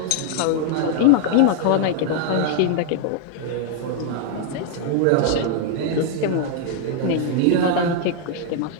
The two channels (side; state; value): both; different; correlation 0.00